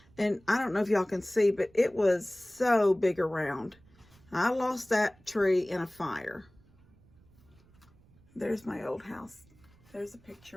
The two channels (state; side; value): noise; right; rumble, 28 dB below the sound